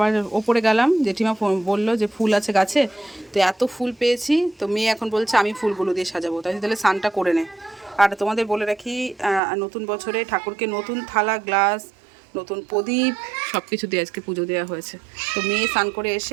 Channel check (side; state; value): left; drops out; at 9.4 s